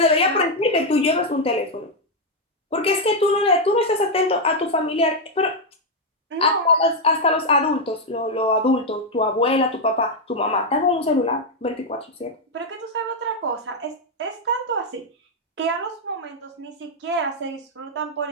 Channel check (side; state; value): both; normal; correlation 0.02